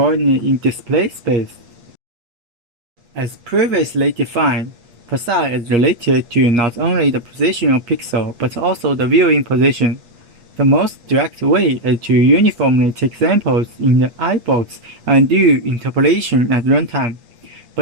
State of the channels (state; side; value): late; left; 8.5 ms